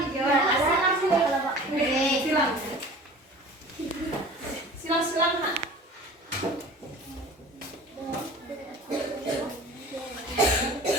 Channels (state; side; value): normal; both; correlation 0.42